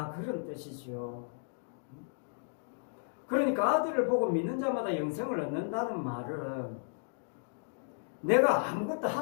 그런 뜻이죠. 그러니까 아들을 보고 믿는 자마다 영생을 얻는다는 말은 내가 아무것도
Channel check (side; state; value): right; silent; digital silence